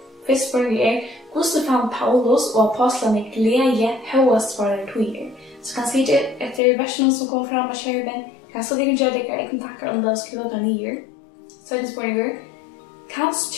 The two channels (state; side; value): drops out; right; at 6.6 s